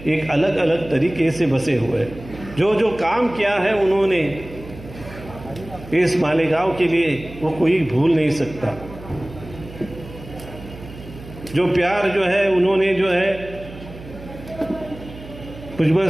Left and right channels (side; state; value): right; noise; hum, 16 dB below the sound